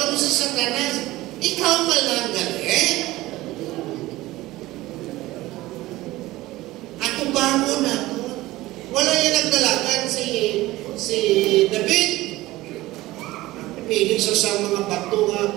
sa Satanas, ikaw malang galing. At tubago na ito. Wala yan nagdalagan si David. Piling sa mga bato nga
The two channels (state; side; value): quieter; left; 17.9 dB